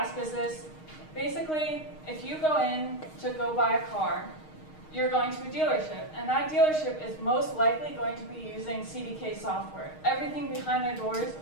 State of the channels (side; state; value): right; late; 6.4 ms